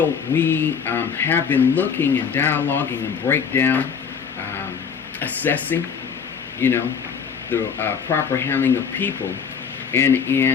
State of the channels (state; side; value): quieter; right; 6.6 dB